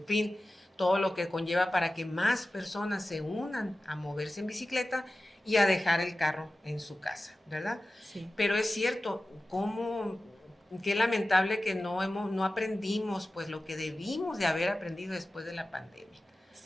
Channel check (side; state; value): both; normal; correlation 0.95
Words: fin, todo lo que conlleva para que más personas se unan a moverse en bicicleta y a dejar el carro en su casa, ¿verdad? Sí. Pero es cierto, ¿cómo qué lamentable que no aprendimos pues lo que debimos de haber aprendido después de la pandemia.